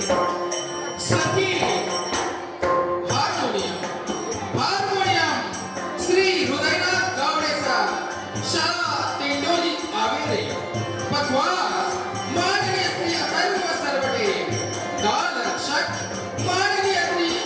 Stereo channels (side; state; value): both; identical; correlation 1.00